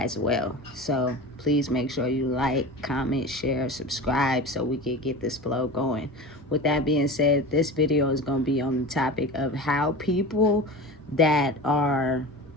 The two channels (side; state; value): both; normal; correlation 0.31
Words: well. So please make sure you like, comment, share, subscribe so we can get this flow going. With that being said, this video is going to be on the topic of how people that are